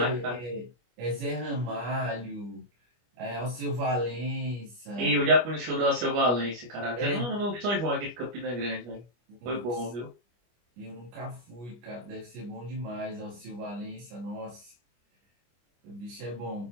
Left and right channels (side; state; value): left; late; 25 ms